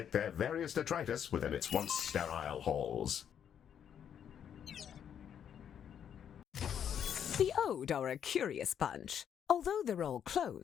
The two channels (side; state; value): right; quieter; 8.8 dB